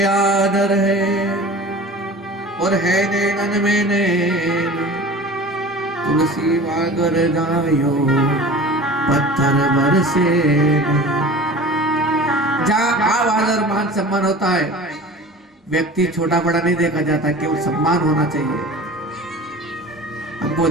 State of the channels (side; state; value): both; normal; correlation 0.39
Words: आदर है, और है नैनन में नैन, तुलसी वागर जायो, पत्थर बरसे। जहाँ आवाज और मान सम्मान होता है, व्यक्ति छोटा बड़ा नहीं देखा जाता, केवल सम्मान होना चाहिए, हमको